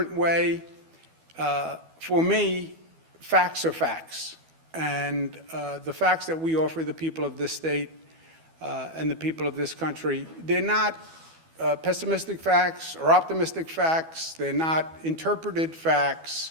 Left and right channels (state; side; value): late; left; 12 ms